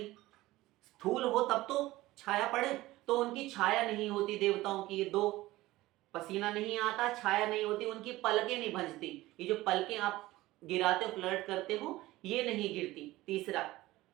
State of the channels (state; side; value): quieter; left; 17.8 dB